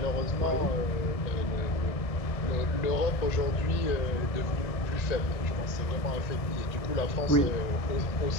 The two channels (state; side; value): late; right; 1.6 ms